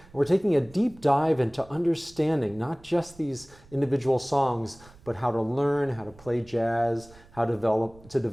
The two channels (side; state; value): right; noise; rumble, 24 dB below the sound